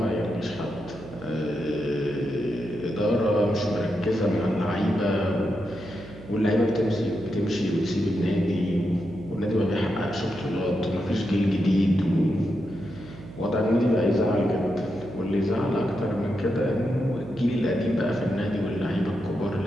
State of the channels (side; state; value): right; noise; hum, 16 dB below the sound